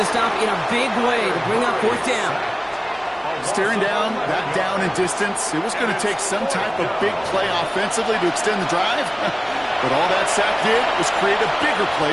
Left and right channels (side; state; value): both; identical; correlation 1.00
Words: stop in a big way to bring up 4th down. Staring down, that down in distance, it was going to take some type of big play offensively to extend the drive. But all that sack did was create a bigger